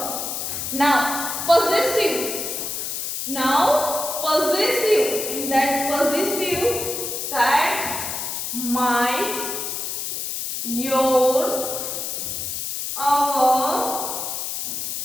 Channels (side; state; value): left; noise; hiss, 4 dB below the sound